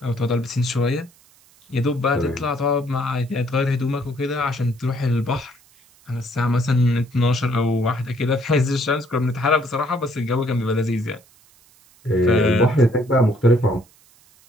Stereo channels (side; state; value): right; noise; hiss, 30 dB below the sound